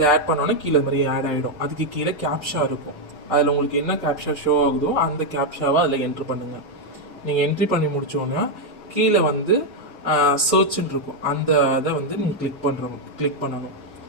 ஆட் பண்ணோன்னே கீழே இது மாதிரி ஆட் ஆகிடும். அதுக்கு கீழே கேப்ஷா இருக்கும். அதில் உங்களுக்கு என்ன கேப்ஷா ஷோ ஆகுதோ அந்த கேப்ஷாவை அதில் என்ட்ரி பண்ணுங்கள். நீங்கள் என்ட்ரி பண்ணி முடித்தோன்னே கீழே வந்து சர்ச்ன்னு இருக்கும். அந்த இதை வந்து நீங்கள் கிளிக் பண்ணணும்.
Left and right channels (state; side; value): normal; both; correlation 0.02